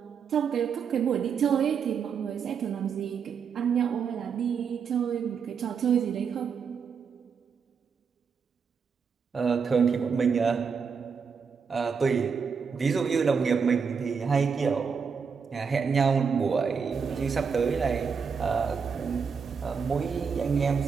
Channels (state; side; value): quieter; left; 6.1 dB